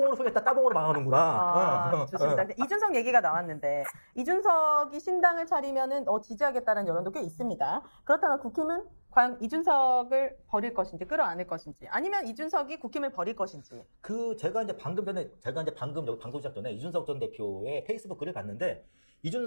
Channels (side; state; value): both; inverted; correlation -1.00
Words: 흥했다, 따봉으로 망하는구나. 좋습니다. 이준석 얘기가 나왔는데 이준석이 신당을 차리면은 지지하겠다는 여론도 꽤 있습니다. 그렇다면 국힘은 과연 이준석을 버릴 것인지 끌어안을 것인지 아니면 이준석이 국힘을 버릴 것인지. 제가 이제 방금 여기 방송 시작 전에 이준석 전 대표의 페이스북 글을 봤는데